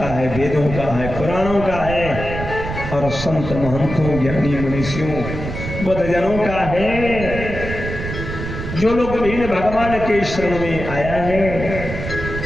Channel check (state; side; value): noise; right; rumble, 7 dB below the sound